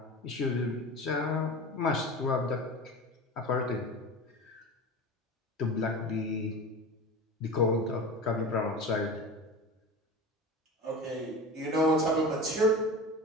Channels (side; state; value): both; normal; correlation 0.31